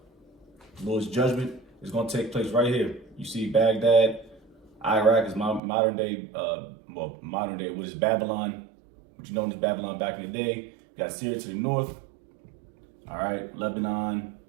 Lord's Judgment is going to take place right here. You see Baghdad, Iraq is modern day, what is Babylon, what you know as Babylon back in the day. You got Syria to the north, all right, Lebanon,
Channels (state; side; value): drops out; left; at 5.6 s